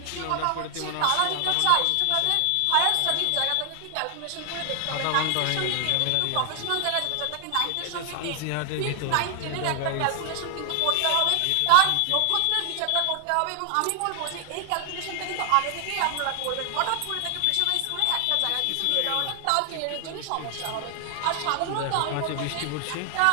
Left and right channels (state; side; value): different; both; correlation 0.00